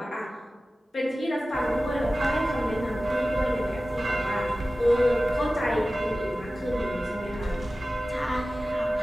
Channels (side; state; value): both; normal; correlation 0.96